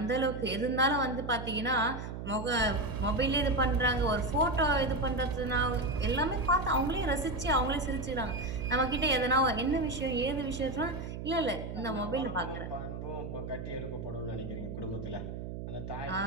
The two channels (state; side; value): noise; right; hum, 7 dB below the sound